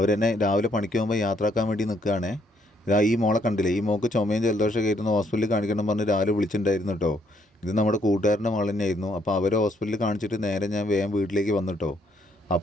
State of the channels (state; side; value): normal; both; correlation 0.70